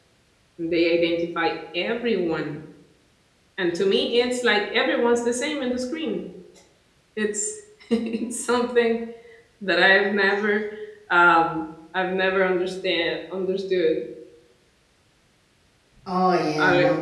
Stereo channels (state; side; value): identical; both; correlation 1.00